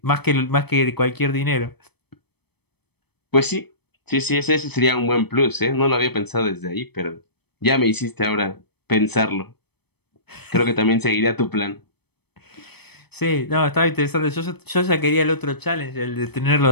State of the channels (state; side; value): late; right; 0.97 ms